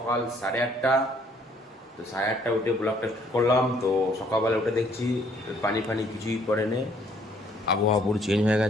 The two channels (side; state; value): both; normal; correlation 0.63